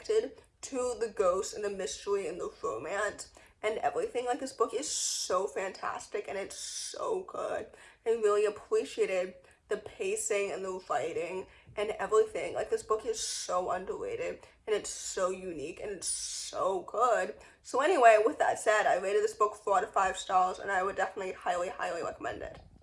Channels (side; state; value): both; identical; correlation 1.00